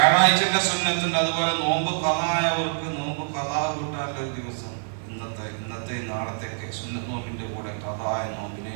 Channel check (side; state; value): left; silent; digital silence